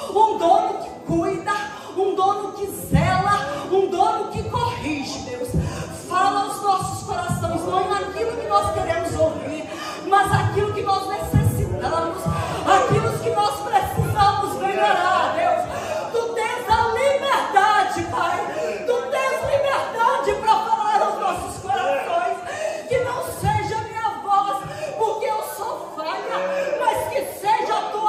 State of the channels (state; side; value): identical; both; correlation 1.00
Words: que cuida, um dono que zela, um dono que corrige. Deus, fala aos nossos corações, não naquilo que nós queremos ouvir, mas aquilo que nós necessitamos, aquilo que nós precisamos melhorar. Deus, tu tens a liberdade, Pai, tu tens liberdade para falar aos nossos corações, que não seja a minha voz, porque eu sou falha,